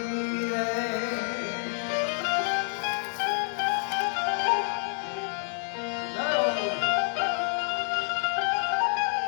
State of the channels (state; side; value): silent; right; digital silence